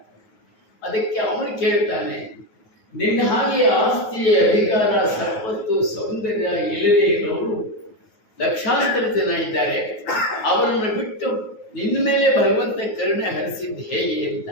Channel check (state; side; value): late; right; 9.3 ms